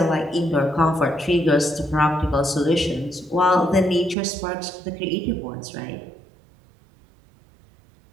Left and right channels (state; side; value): drops out; left; at 4.2 s